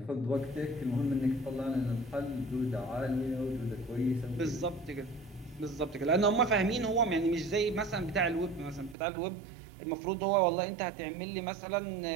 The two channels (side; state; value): left; drops out; at 9.0 s